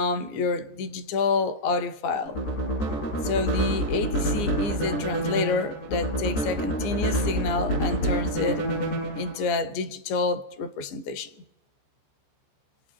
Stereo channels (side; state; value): right; late; 14 ms